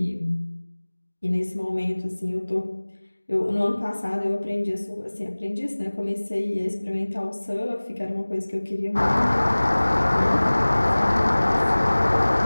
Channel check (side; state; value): both; inverted; correlation -1.00